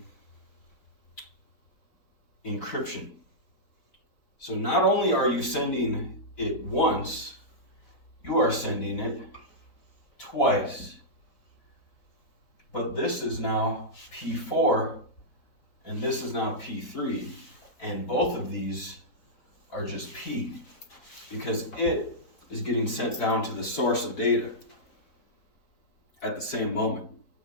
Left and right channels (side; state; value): right; late; 4.3 ms